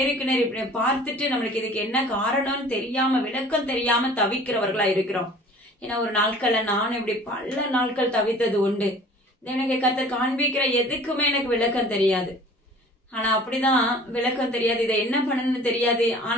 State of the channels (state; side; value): normal; both; correlation 0.47